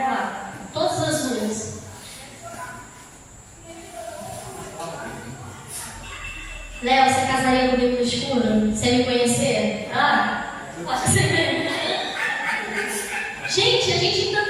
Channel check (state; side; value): identical; both; correlation 1.00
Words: lá, todas as luzes. Léo, você casaria comigo no escuro? Sem me conhecer? Acho que você... Gente, a gente ainda